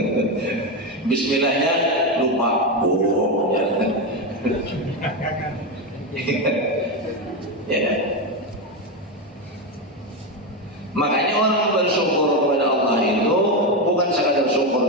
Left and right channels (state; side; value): normal; both; correlation 0.11